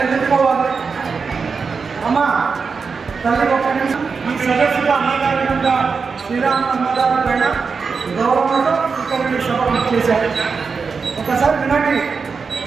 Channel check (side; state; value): left; quieter; 5.2 dB